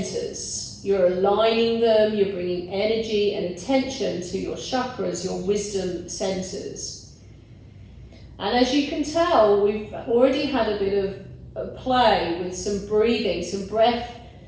You're aligning them, you're bringing energy and attention to your chakras, your wisdom centers. And as you can tell, we've already had a bit of play with some breathing, some breath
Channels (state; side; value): identical; both; correlation 1.00